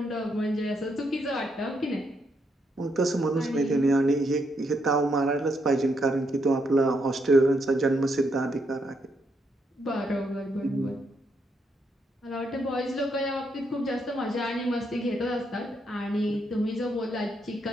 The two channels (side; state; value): both; normal; correlation 0.77